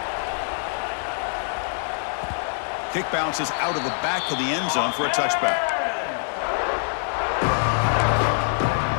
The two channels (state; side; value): silent; right; digital silence